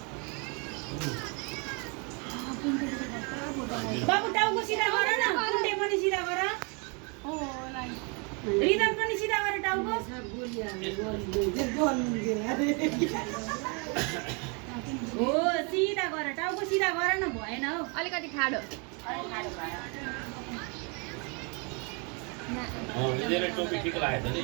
बाबु टाउको सिधा गर न कुण्डे पनि सिधा गर रिदम पनि सिधा गर टाउको हो सिधा गर टाउको सिधा गर न भएन हौ अलिकति खाडो यिनीहरूले टोपी ठिक लागेछ नि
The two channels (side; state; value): left; quieter; 33.3 dB